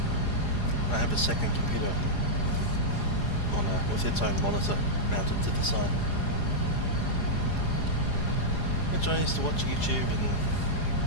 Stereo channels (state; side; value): late; right; 4.9 ms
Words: I have a second computer with its own monitor mounted to the side, which I used to watch YouTube and